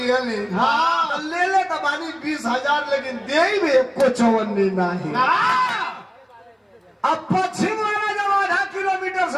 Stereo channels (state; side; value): identical; both; correlation 1.00